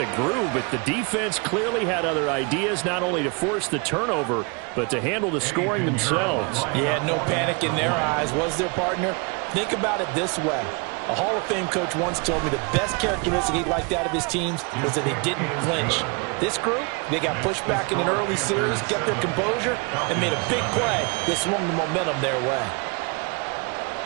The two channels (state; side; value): quieter; left; 31.4 dB